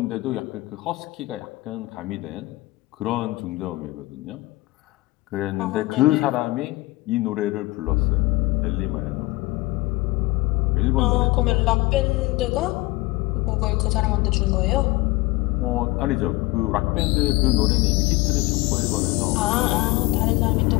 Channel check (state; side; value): quieter; right; 21.3 dB